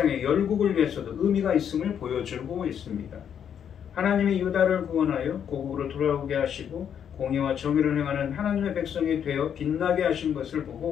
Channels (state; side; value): quieter; right; 8.5 dB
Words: 열국을 위해서도 의미가 있음을 보여주고 있습니다. 하나님이 유다를 구원하여 고국으로 돌아오게 하시고 공의와 정의를 행하는 하나님의 백성이 되어 빛나게 하신 것을